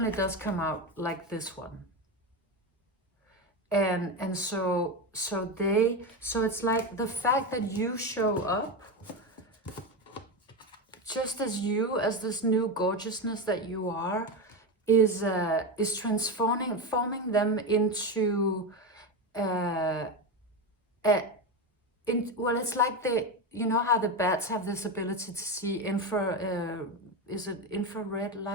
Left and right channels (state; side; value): normal; both; correlation 0.17